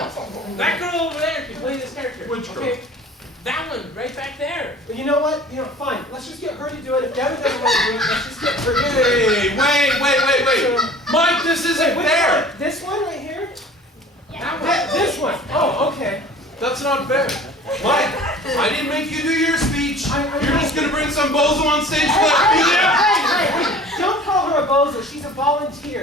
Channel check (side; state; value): both; normal; correlation 0.45